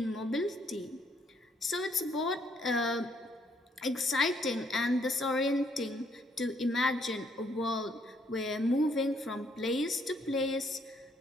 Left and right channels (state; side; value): normal; both; correlation 0.69